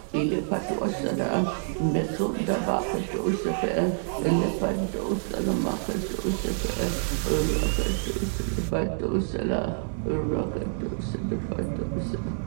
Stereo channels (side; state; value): left; silent; digital silence